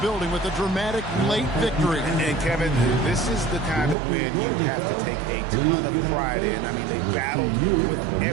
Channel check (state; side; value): drops out; left; at 4.0 s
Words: with a dramatic late victory. And Kevin, this is the kind of win you have to take a ton of pride in. I mean, they battled with